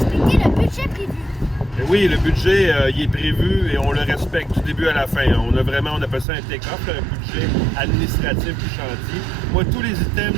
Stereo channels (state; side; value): drops out; left; at 6.2 s